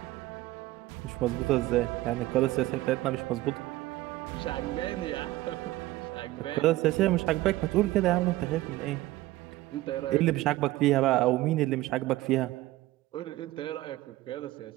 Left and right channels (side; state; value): left; quieter; 17.1 dB